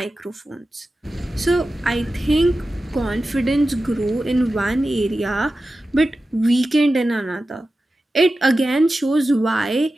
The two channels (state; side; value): normal; both; correlation 0.93